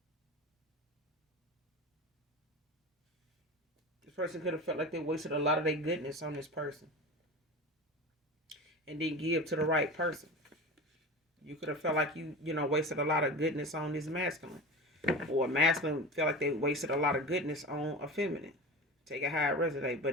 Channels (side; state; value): both; normal; correlation 0.30